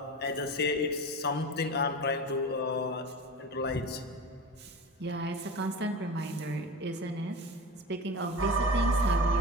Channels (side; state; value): both; normal; correlation 0.30